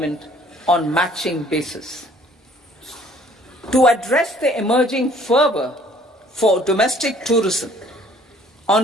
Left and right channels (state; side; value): normal; both; correlation 0.57